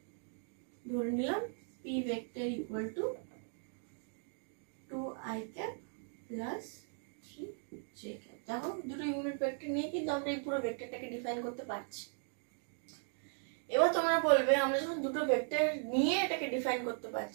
ধরে নিলাম P vector equal to 2i cap plus 3j cap। দেখো দুটো ইউনিট ভেক্টর নিয়ে কিন্তু আমরা এই পুরো ভেক্টরটাকে ডিফাইন করতে পারছি। এবার তোমরা বলবে আমরা যখন দুটো ভেক্টর নিয়ে এটাকে ডিফাইন করতে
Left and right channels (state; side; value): silent; left; 53 dB below the other